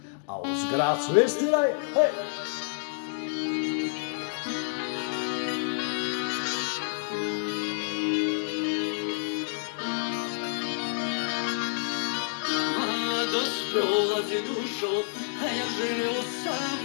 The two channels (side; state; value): right; silent; digital silence